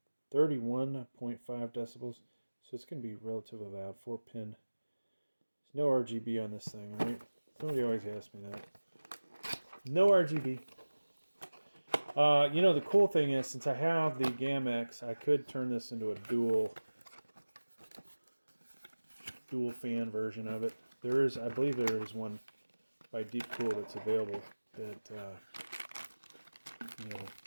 decibels. So it's going to be relatively loud. 4-pin. There's no RGB on this thing, right? Somebody always asks me that. No RGB. The cool thing is, since I have the GAMMAXX, I could turn this into a dual fan version of it. There is, I believe there is one by DeepCool that's available that,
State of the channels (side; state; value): both; inverted; correlation -1.00